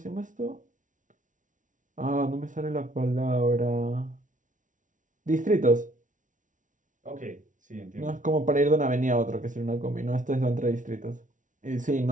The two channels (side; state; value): left; late; 0.37 ms